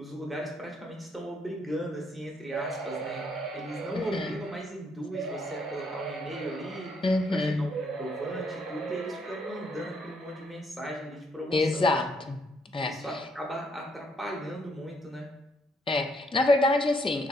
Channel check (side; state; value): both; normal; correlation 0.71